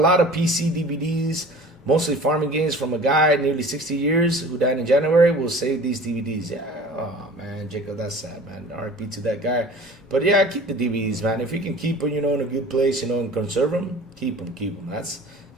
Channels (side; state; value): both; normal; correlation 0.43